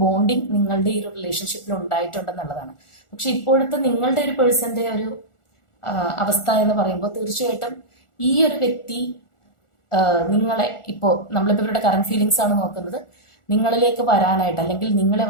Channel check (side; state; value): right; late; 1.4 ms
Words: ബോണ്ടിങ് നിങ്ങളുടെ ഈ ഒരു റിലേഷൻഷിപ്പിൽ ഉണ്ടായിട്ടുണ്ടെന്നുള്ളതാണ്. പക്ഷെ ഇപ്പോഴത്തെ നിങ്ങളുടെ ഒരു പേഴ്സന്റെ ഒരു അവസ്ഥ എന്ന് പറയുമ്പോൾ തീർച്ചയായിട്ടും ഈ ഒരു വ്യക്തി നിങ്ങളെ നമ്മളിപ്പോൾ ഇവരുടെ കറന്റ് ഫീലിങ്സ് ആണ് നോക്കുന്നത്, നിങ്ങളിലേക്ക് വരാനായിട്ട് അല്ലെങ്കിൽ നിങ്ങളെ